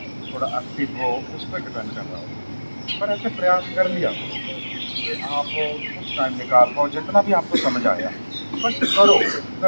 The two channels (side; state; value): both; inverted; correlation -1.00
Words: थोड़ा एक्टिव हो, उस पर डिपेंड कर रहा हो। पर ऐसे प्रयास कर लिया कि आप कुछ टाइम निकाल पाओ, जितना भी आपको समझ आया बस करो,